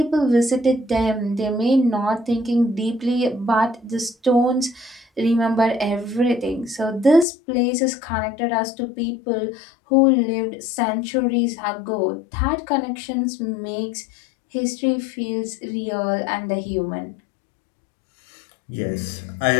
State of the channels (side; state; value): right; drops out; at 7.2 s